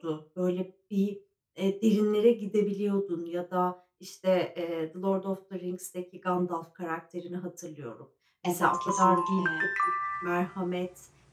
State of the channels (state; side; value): identical; both; correlation 1.00